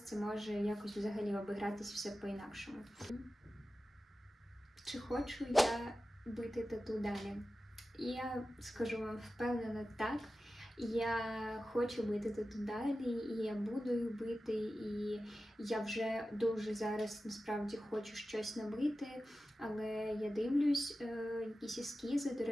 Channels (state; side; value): normal; both; correlation 0.94